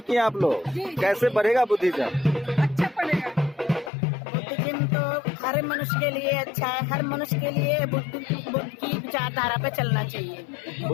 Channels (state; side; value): drops out; right; at 3.9 s